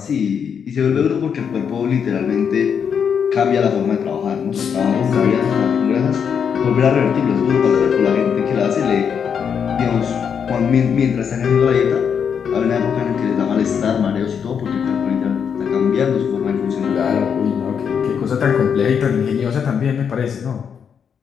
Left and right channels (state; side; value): quieter; right; 7.2 dB